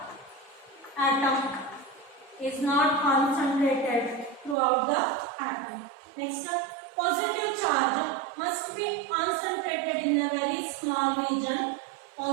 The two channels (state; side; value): drops out; left; at 4.5 s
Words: atom, is not concentrated throughout the atom. Next, positive charge must be concentrated in a very small region.